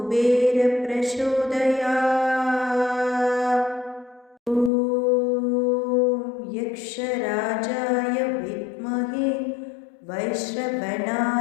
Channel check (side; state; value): right; drops out; at 4.7 s